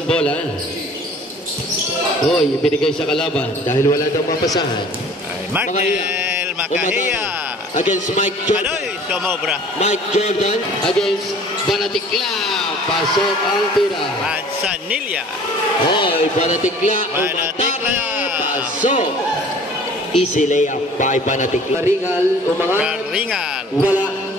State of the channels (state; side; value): normal; both; correlation 0.49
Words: bola. Hoy, ibinigay sa kalaban dahil wala daw mapasahan. Markel Makahiya. Against Mike Jordan. Adoy, sumobra. Mike Jordan against Banatikla. Pasok ang tira. Manzanilla. Hoy, Banatikla. Banatikla. Pasok. Easy layup by Banatikla. Karingal umangat. Karingal. Wala.